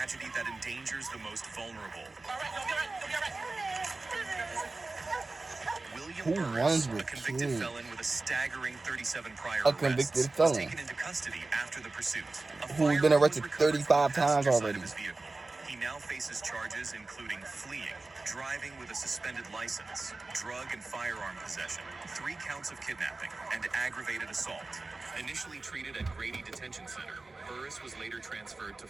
that endangers the most vulnerable? Who William runs Burris, with a convicted kids? felon with a staggering 37 prior A convicted arrests, felon. was taken into custody after the pursuit. A Who's been firearm arrested was recovered from 35 the times passenger side already. of his vehicle. He now faces charges including fleeing, driving with a suspended license, drug and firearm possession, 3 counts of kidnapping, and aggravated assault. Initially treated at Grady Detention Center, Burris was later transferred to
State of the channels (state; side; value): quieter; left; 3.4 dB